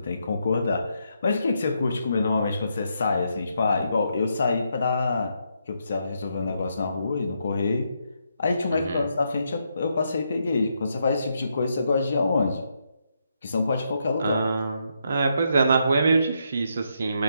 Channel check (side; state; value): both; inverted; correlation -0.79